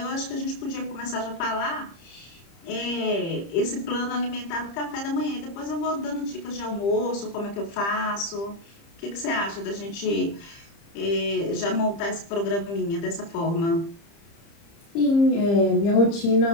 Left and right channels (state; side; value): late; right; 30 ms